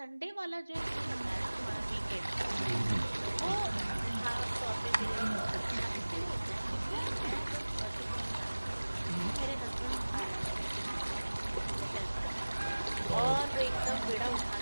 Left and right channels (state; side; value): inverted; both; correlation -1.00